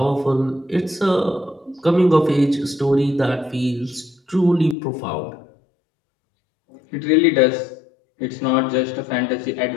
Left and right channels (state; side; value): drops out; right; at 4.8 s